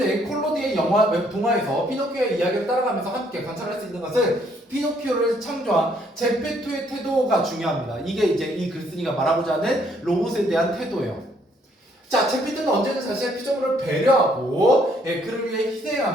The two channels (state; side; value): normal; both; correlation 0.68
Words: 콜로디의 동화에서 피노키오의 이야기를 따라가면서 함께 관찰할 수 있는 것은 피노키오를 창조한 제페토의 태도가 중요합니다. 이게 이제 이 글쓴이가 말하고자 하는 로봇에 대한 태도예요. 자, 제페토는 언제든 자신의 피조물을 배려하고 그를 위해